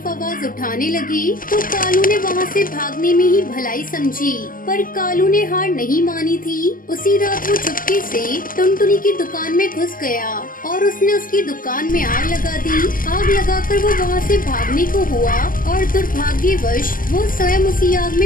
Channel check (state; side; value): late; right; 0.41 ms